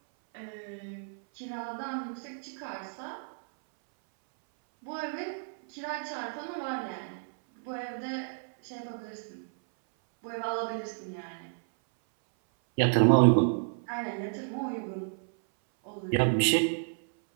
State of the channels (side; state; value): left; silent; 57 dB below the other